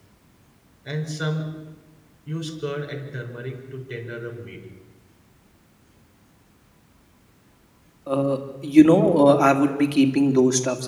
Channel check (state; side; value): identical; both; correlation 1.00